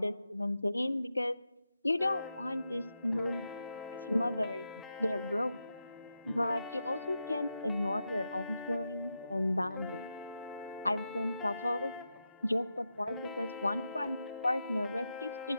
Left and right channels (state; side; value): inverted; both; correlation -0.88